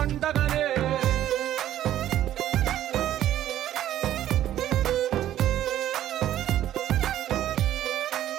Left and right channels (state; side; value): quieter; left; 12.3 dB